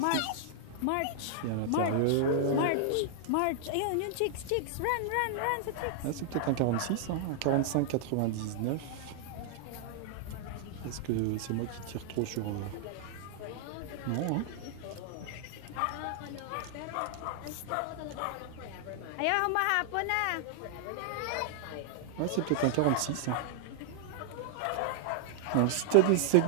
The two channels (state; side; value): different; both; correlation 0.00